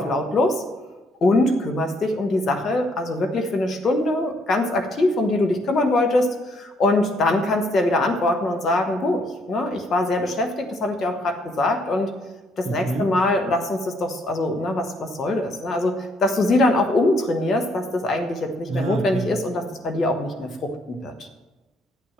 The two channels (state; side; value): normal; both; correlation 0.69